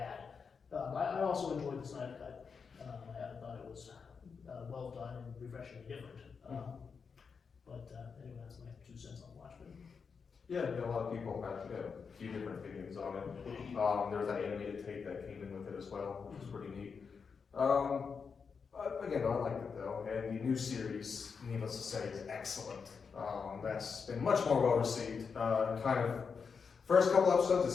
I also enjoyed the Snyder Cut. I thought it was well done and refreshingly different. But anyway, that's my 2 cents on Watchmen. Yeah, a lot of people had a few different opinions on it. There was that animated tape that came in with it as well, which was pretty neat. Again, I liked it though, and the new series, needless to say, is excellent. That's been much more well received. First couple episodes,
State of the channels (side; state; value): right; quieter; 5.7 dB